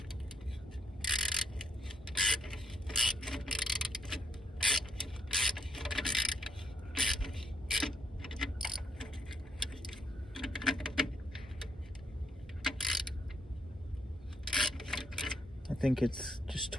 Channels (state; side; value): normal; both; correlation 0.73